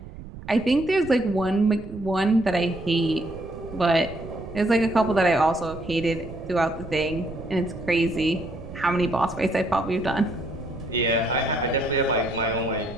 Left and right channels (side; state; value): right; noise; rumble, 14 dB below the sound